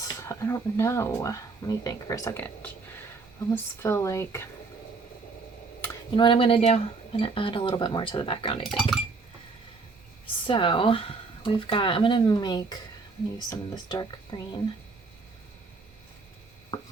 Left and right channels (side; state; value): left; quieter; 4.2 dB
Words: I don't know. Let me think for a second. I almost feel like, you know what I'm going to do? I'm going to add a little bit more to the background, I think. So, we've got, I'm going to use some of this dark green.